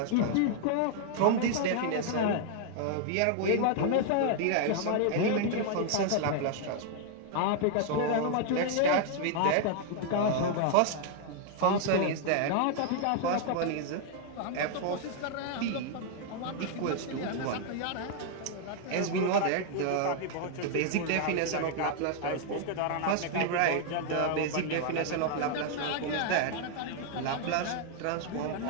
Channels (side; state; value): both; different; correlation 0.00